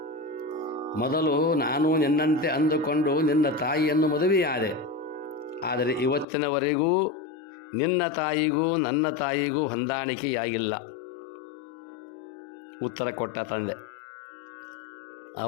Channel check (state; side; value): drops out; right; at 6.2 s